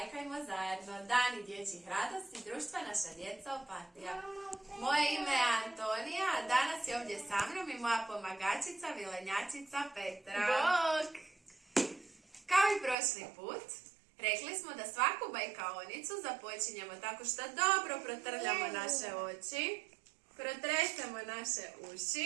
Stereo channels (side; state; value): left; drops out; at 13.0 s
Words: zajedno. Dani dječjih radosti, društva naša djeca Opatija. Moje ime je Antonija, a danas je ovdje sa mnom i moja pomagačica, vilenjačica Petra. Bok! Kao i prošli put, rekli smo da svaku bajkaonicu započinjemo tako što dobro protrljamo naše oči, protresemo naše